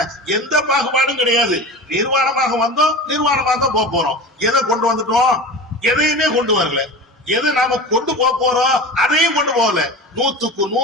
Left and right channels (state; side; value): normal; both; correlation 0.31